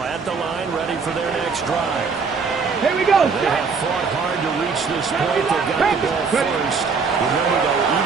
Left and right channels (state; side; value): quieter; left; 5.2 dB